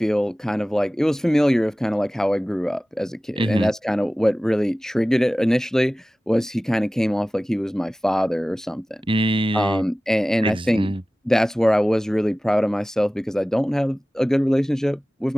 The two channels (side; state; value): both; normal; correlation 0.97